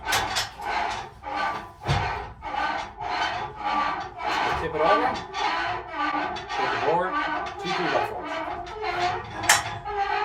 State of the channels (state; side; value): identical; both; correlation 1.00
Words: Tip it over. Take the board, two 2x4s.